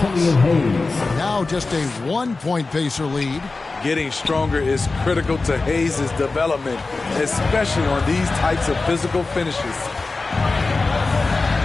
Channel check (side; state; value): right; quieter; 3.7 dB